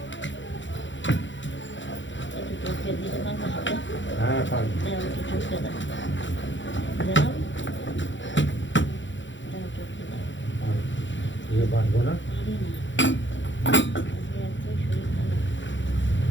একটু চটকে দিতে পারবো হাতে? হ্যাঁ পারবো। দাও একটু চটকে দাও। চটকে দাও। দিয়ে পারবো না। পারি না। আজকে এত শরীর খারাপ।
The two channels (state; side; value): late; right; 0.54 ms